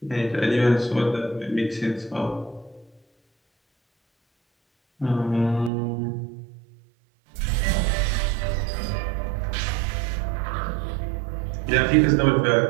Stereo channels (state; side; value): drops out; left; at 5.7 s